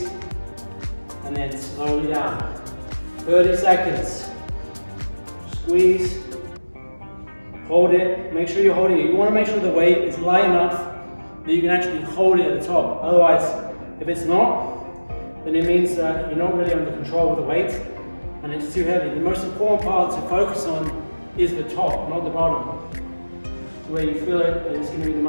And then slowly down. 30 seconds. Squeeze. Hold it. Make sure you're holding it. You want to make sure the weight is light enough that you can actually hold it at the top. Otherwise, if it's not, then it means that you're not really under control of the weight and it's too heavy. The most important part to focus on is the top, not the bottom. It's where you feel it, and it's going to be the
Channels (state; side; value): inverted; both; correlation -1.00